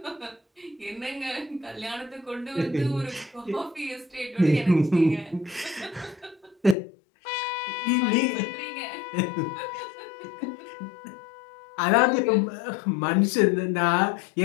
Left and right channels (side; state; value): right; drops out; at 6.8 s